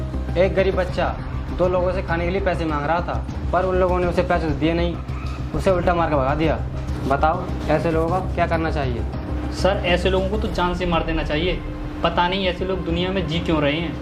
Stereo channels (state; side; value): identical; both; correlation 1.00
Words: एक गरीब बच्चा 2 लोगों से खाने के लिए पैसे मांग रहा था, पर उन लोगों ने उसे पैसे दिए नहीं, उसे उल्टा मार कर भगा दिया। बताओ ऐसे लोगों का क्या करना चाहिए? सर, ऐसे लोगों को तो जान से मार देना चाहिए। पता नहीं ऐसे लोग दुनिया में जी क्यों रहे हैं।